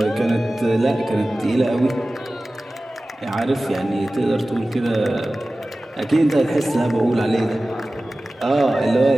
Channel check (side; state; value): both; normal; correlation 0.96